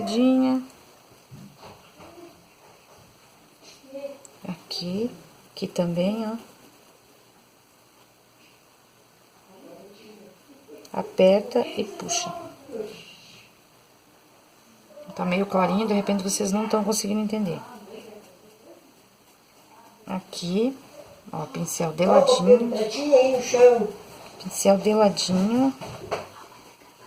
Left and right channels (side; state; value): both; identical; correlation 1.00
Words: Aqui também, ó. Aperta e puxa. Tá meio clarinho, de repente vocês não estão conseguindo entender. Aqui, ó, pincel de ladinho. Pincel de ladinho.